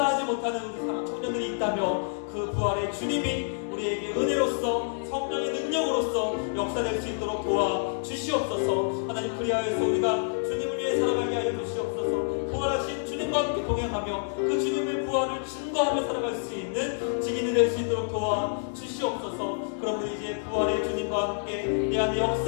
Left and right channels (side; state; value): right; silent; digital silence